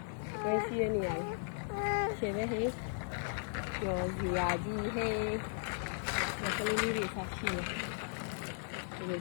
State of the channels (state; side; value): silent; right; 53 dB below the other